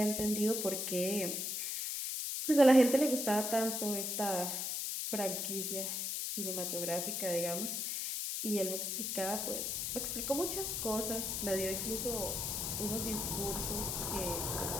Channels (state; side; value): noise; left; hiss, 1 dB below the sound